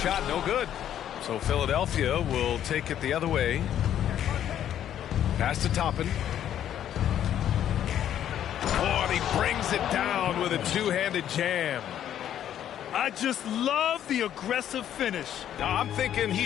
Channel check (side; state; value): right; quieter; 10.6 dB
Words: no good. So Philadelphia will take it the other way. Pass to Toppin. Oh, and he brings it down with a two-handed jam. I just love the aggressive finish. Now, I'm thinking